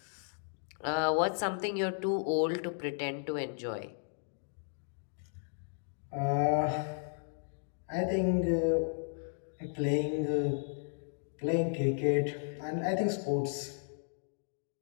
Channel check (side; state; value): right; silent; digital silence